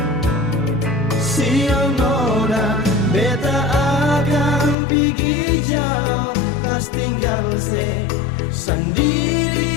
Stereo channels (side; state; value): right; drops out; at 4.8 s